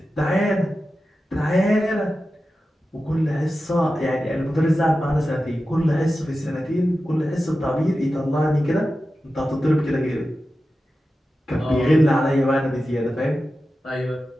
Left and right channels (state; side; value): normal; both; correlation 0.93